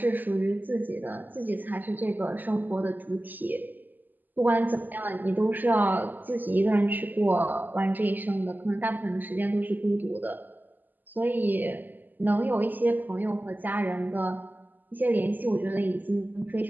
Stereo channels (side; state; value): left; late; 0.086 ms